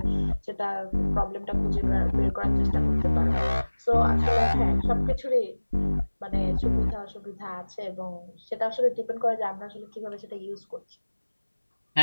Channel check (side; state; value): both; inverted; correlation -1.00